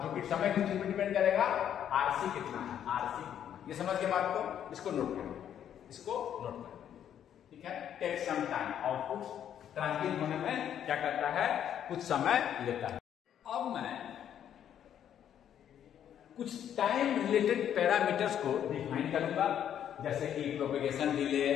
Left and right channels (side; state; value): right; quieter; 9.8 dB